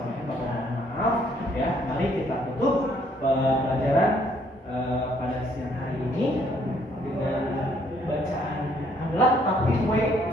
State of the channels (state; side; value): normal; both; correlation 0.66